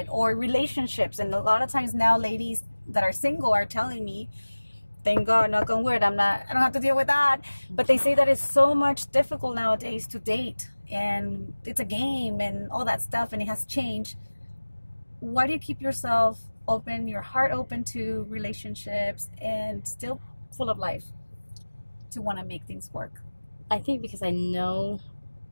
Or relationships. And a lot of times now, ladies that are single are telling me, thank God, knock on wood, I don't have to deal with that. But they say that it's so much difficult nowadays to date. And it's a game and all that stuff. And it has changed. Why do you keep yourself open, your heart open to relationships, and still full of life to want to make things work? I think because I know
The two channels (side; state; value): both; inverted; correlation -1.00